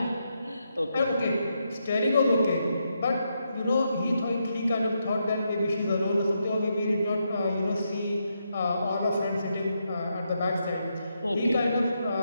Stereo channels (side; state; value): both; inverted; correlation -0.82